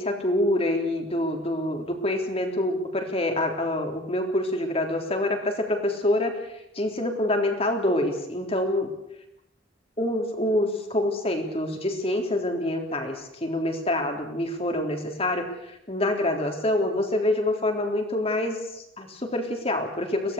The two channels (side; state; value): both; normal; correlation 0.45